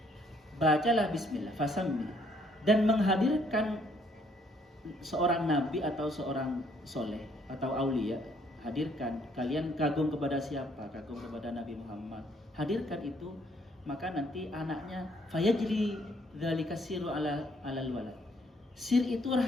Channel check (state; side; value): normal; both; correlation 0.66